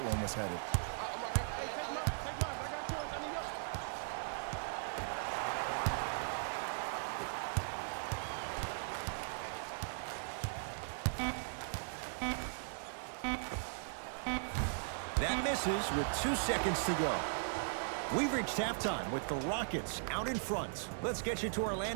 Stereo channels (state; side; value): silent; left; digital silence